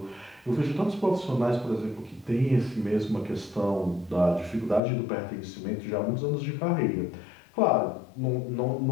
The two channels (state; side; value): drops out; right; at 4.8 s